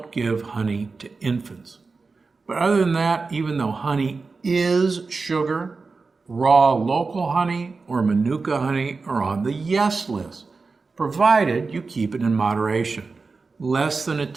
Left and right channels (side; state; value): left; quieter; 4.2 dB